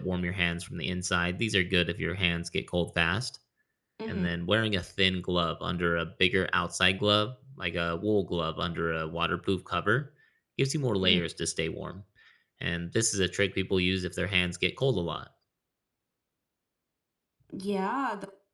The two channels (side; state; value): both; identical; correlation 1.00